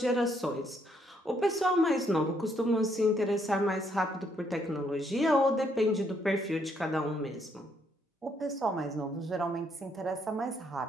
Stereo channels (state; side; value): normal; both; correlation 0.72